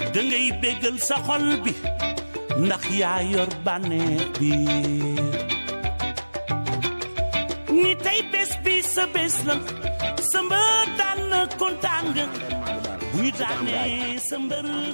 dangay bégal sa xol bi ndax yaa yor bànneex bi ni tey bés bi sa bés la sa mbër daan na kontaan nga bu ñu daanee sa mbër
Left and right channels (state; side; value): inverted; both; correlation -1.00